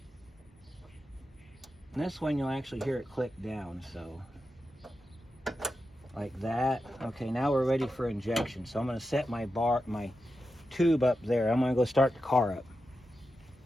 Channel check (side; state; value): both; normal; correlation 0.89